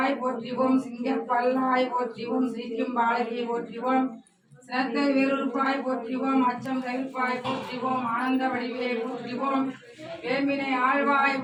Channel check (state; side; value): identical; both; correlation 1.00